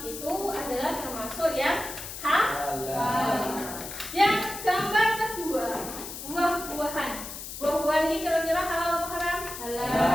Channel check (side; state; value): left; noise; hiss, 9 dB below the sound